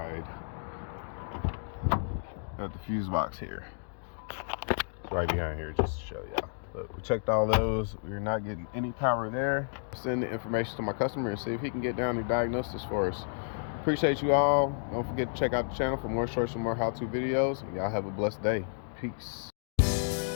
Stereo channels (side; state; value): right; silent; digital silence